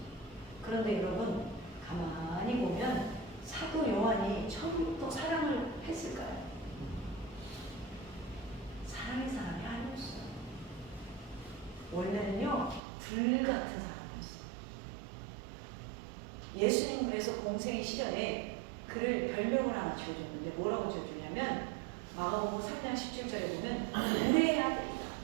그런데 여러분 가만히 보면 사도 요한이 처음부터 사랑을 했을까요? 사랑의 사람이 아니었어요. 원래는요 불같은 사람이었어요. 예수님 그래서 공생의 시절에 그를 별명을 하나 지어줬는데 뭐라고 지어주냐면 마가복음 3장 17절에 보면 우레의 아들이다.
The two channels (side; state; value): left; drops out; at 12.8 s